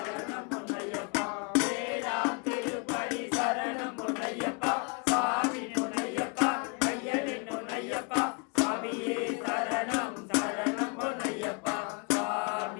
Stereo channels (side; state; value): right; quieter; 34.4 dB